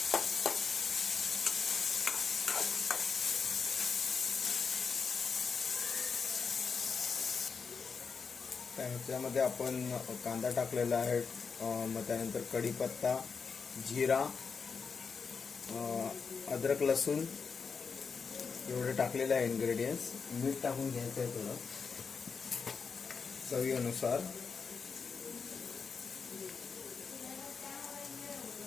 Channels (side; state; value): right; quieter; 5.5 dB